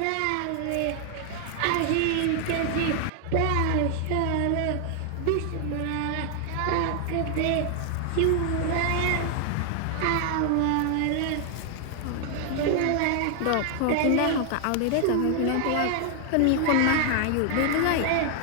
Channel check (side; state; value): both; different; correlation 0.00